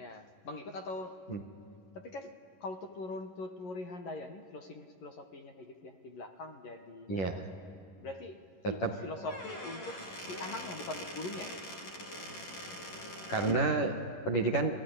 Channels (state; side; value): late; right; 11 ms